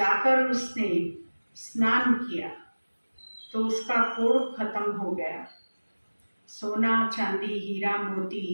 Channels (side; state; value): both; inverted; correlation -1.00